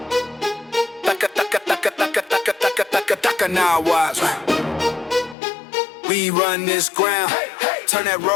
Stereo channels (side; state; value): right; drops out; at 5.4 s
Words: Now watch. We run this ground. Turn that